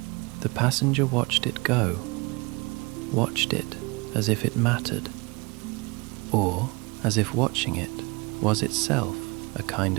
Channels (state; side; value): quieter; left; 26.7 dB